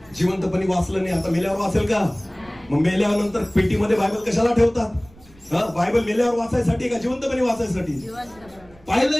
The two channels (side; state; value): right; noise; rumble, 26 dB below the sound